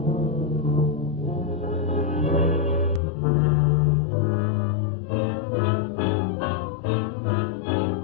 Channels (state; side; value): drops out; right; at 3.0 s